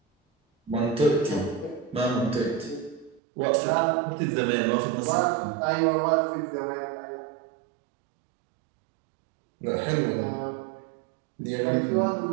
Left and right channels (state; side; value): drops out; left; at 3.2 s